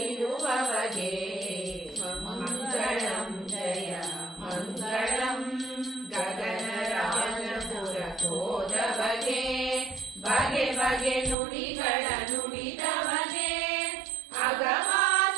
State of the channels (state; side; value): drops out; left; at 11.4 s